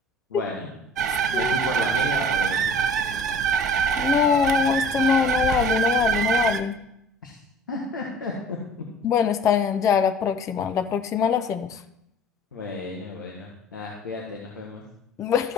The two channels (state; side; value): normal; both; correlation 0.47